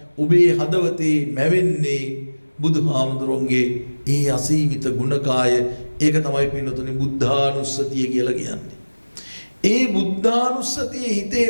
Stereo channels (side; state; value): both; inverted; correlation -1.00